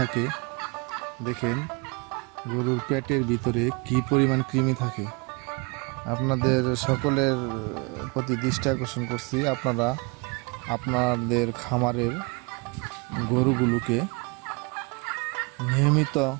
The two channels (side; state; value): left; quieter; 29.0 dB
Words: দেখেন গরুর পেটের ভিতরে কি পরিমাণ কৃমি থাকে। আপনাদের সকলের প্রতি দৃষ্টি আকর্ষণ করছি, আপনারা আপনাদের খামারের গরুগুলোকে নিয়মিত